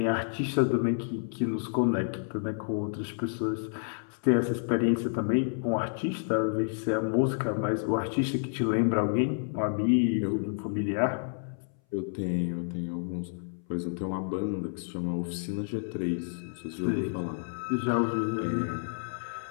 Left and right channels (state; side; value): silent; right; 58 dB below the other